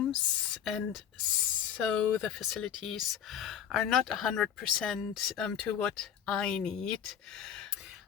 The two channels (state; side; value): quieter; right; 9.0 dB